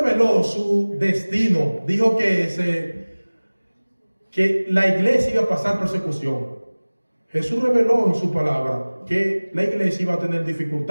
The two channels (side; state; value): both; inverted; correlation -1.00